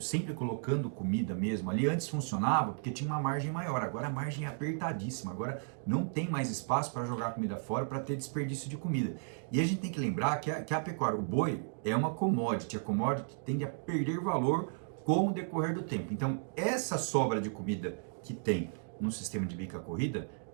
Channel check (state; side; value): silent; left; digital silence